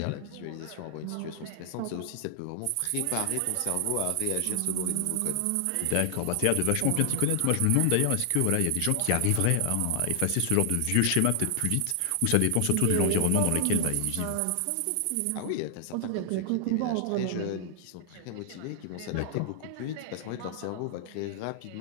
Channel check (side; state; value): both; different; correlation 0.00